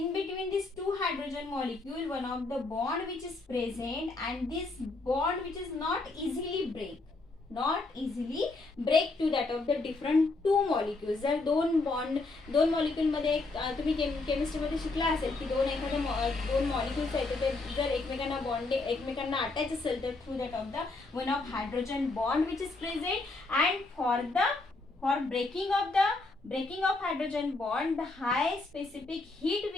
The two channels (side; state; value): right; quieter; 3.4 dB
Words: between these two hydrogen molecule one of the bond which is present, and this bond which is not easily break to that of the different two molecules. जर दोन molecule मध्ये तुम्ही chemistry मध्ये शिकला असेल की दोन molecules आहेत ते जर एकमेकांना अटॅच असेल तर through that of the one of hydrogen bond which is present, and for breaking of hydrogen bond, the high specific heat